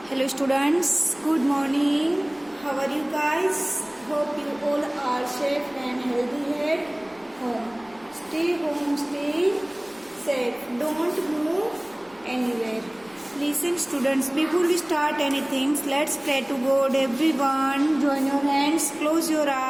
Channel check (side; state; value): left; noise; rumble, 30 dB below the sound